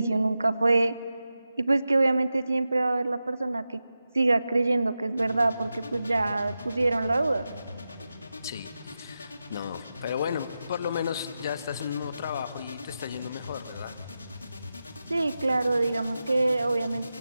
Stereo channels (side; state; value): both; inverted; correlation -0.91